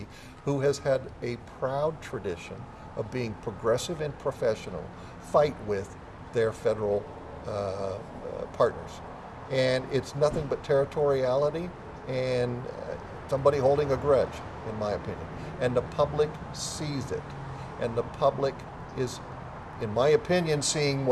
who has had a proud tradition of being progressive and professional, fight with their federal partners. And it's nothing but territoriality and somebody holding a grudge, in my opinion. And the public sees it. And the public is in my opinion, seeing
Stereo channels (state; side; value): identical; both; correlation 1.00